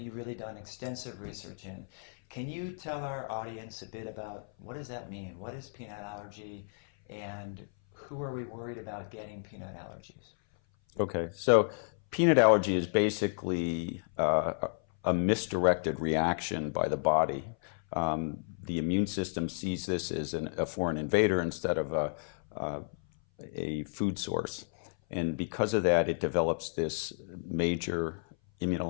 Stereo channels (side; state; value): right; silent; 56 dB below the other